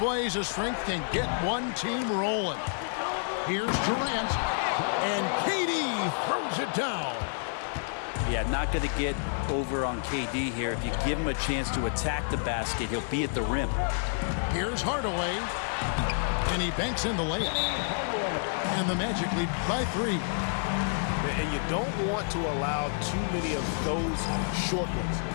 of strength can get one team rolling. Here's Durant. And KD throws it down. Yeah, not going to get over on KD here. If you give him a chance to attack the basket, he'll be at the rim. Here's Hardaway. And he banks in the layup. And the Magic lead by 3. And you don't want to allow too many of those short ones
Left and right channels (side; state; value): right; silent; digital silence